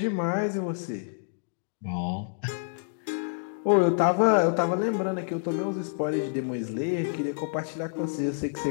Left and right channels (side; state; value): right; silent; digital silence